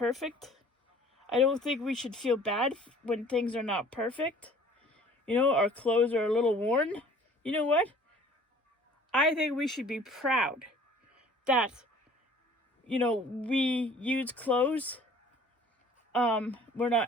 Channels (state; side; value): normal; both; correlation 0.51